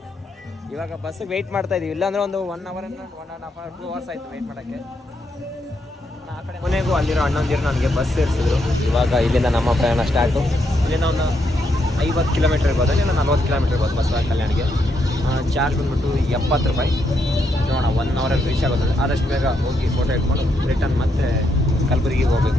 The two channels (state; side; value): normal; both; correlation 0.78